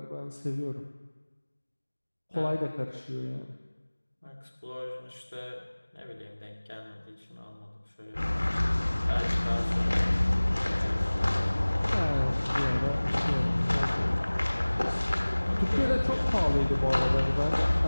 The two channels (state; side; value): inverted; both; correlation -1.00